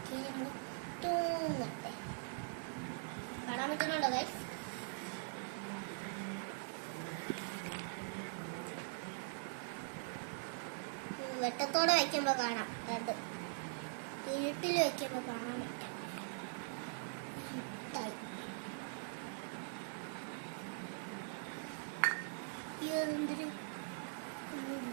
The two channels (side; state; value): left; silent; digital silence